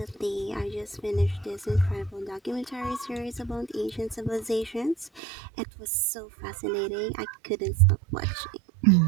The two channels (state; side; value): drops out; left; at 5.2 s